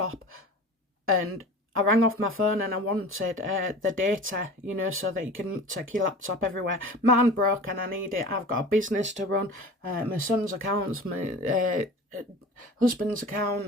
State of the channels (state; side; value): normal; both; correlation 0.38